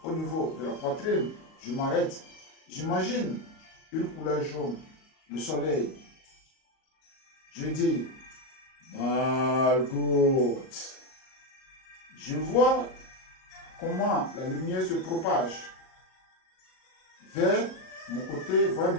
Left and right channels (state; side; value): late; right; 38 ms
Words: au niveau de la poitrine. Je m'arrête. J'imagine une couleur jaune, le soleil. Je dis Malgout. Je vois comment la lumière se propage vers mon côté, vers